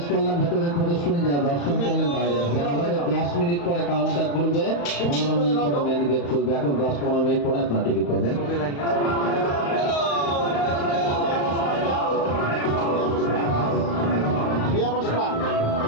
করলাম ভেতরের প্রদর্শনী, যারা দর্শন করলেন বাইরে আসবেন। আমাদের 10 মিনিট পরে কাউন্টার খুলবে, 15 মিনিট পরে মেন গেট খুলবে। এখন 10-15 মিনিট পরে আপনার টিকিট পাবেন। ছবি লাগবে। বিয়া বসপা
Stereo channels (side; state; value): right; late; 35 ms